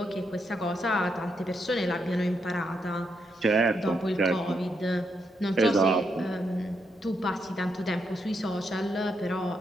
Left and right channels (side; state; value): both; normal; correlation 0.80